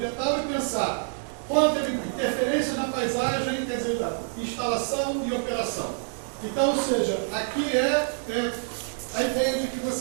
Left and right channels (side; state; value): left; silent; digital silence